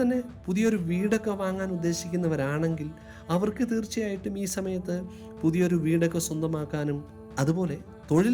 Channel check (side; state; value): both; identical; correlation 1.00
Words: പുതിയൊരു വീടൊക്കെ വാങ്ങാൻ ഉദ്ദേശിക്കുന്നവരാണെങ്കിൽ അവർക്ക് തീർച്ചയായിട്ടും ഈ സമയത്ത് പുതിയൊരു വീടൊക്കെ സ്വന്തമാക്കാനും അതുപോലെ തൊഴിൽ